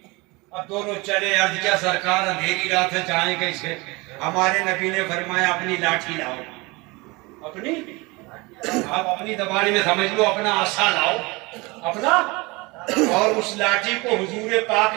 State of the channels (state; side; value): quieter; left; 24.8 dB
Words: अब दोनों चले। अर्ज क्या सरकार, अंधेरी रात है, जाए कैसे? हमारे नबी ने फरमाया अपनी लाठी लाओ। अपनी, आप अपनी जबान में समझ लो, अपना आसा लाओ अपना। और उस लाठी को हुजूर पाक